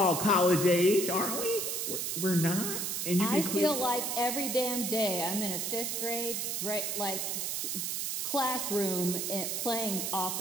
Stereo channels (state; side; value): noise; right; hiss, 1 dB below the sound